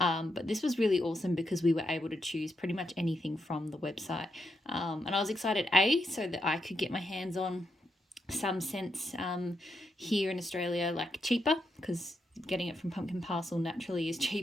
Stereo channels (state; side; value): normal; both; correlation 0.82